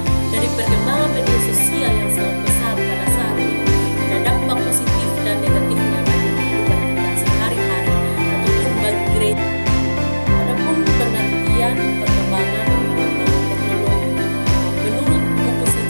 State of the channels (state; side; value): inverted; both; correlation -1.00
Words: Dari perkembangan media sosial yang sangat besar pada saat ini, ada dampak positif dan negatifnya bagi kehidupan kita sehari-hari ataupun bagi gereja. Adapun pengertian perkembangan teknologi, menurut buku